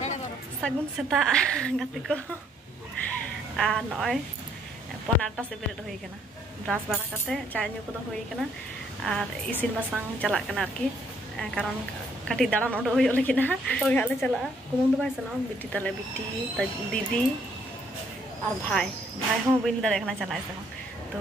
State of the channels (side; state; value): both; normal; correlation 0.67